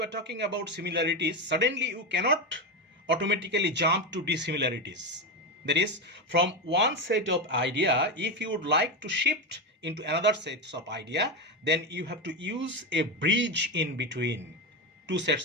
are talking about similarities, suddenly you cannot automatically jump to dissimilarities. That is, from one set of idea, if you would like to shift into another set of idea, then you have to use a bridge in between two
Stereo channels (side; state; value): both; normal; correlation 0.13